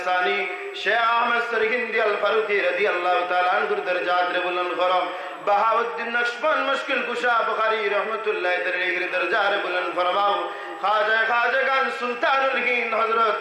শেখ আহমদ সরহিন্দি আল-ফারুকি রাদিয়াল্লাহু তাআলা আনহুর দরজাত রে বুলন্দ করো। বাহাউদ্দিন নকশবন্দ মুশকিল কুশা বুখারী রাহমাতুল্লাহ আলাইহির দরজা রে বুলন্দ ফরমাও। খাজাগান সুলতানুল হিন্দ হযরত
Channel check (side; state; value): both; identical; correlation 1.00